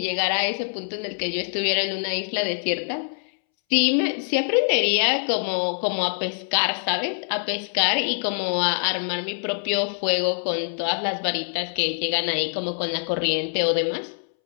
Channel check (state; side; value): silent; right; 62 dB below the other